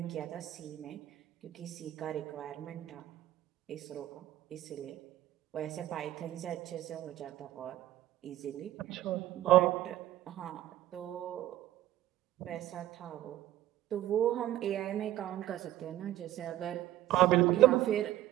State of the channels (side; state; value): left; quieter; 14.0 dB